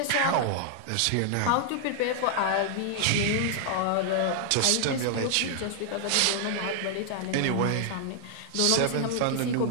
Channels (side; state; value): both; different; correlation -0.01